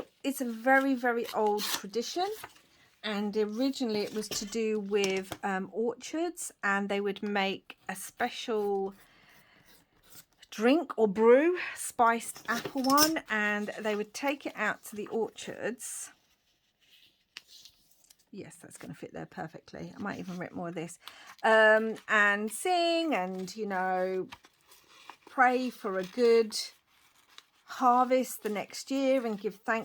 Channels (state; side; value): identical; both; correlation 1.00